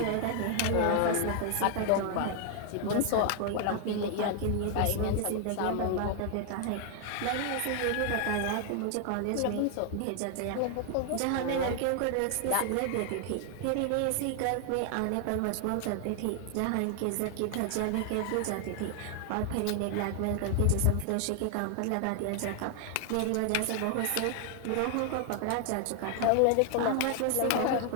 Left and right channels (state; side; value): different; both; correlation 0.00